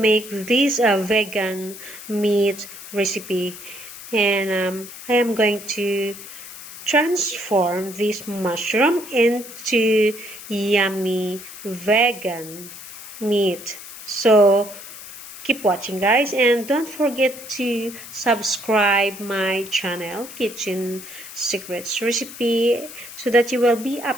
this vegan meat recipe. And I am going to transform this mushroom into yummy vegan meat. So keep watching guys, and don't forget to subscribe my channel Kitchen Secrets Recipe so that you will be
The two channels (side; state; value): left; noise; hiss, 14 dB below the sound